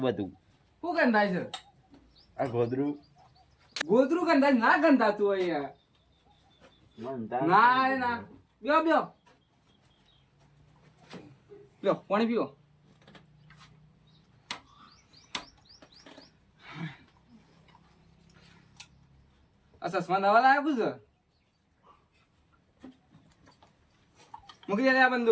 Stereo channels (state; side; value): identical; both; correlation 1.00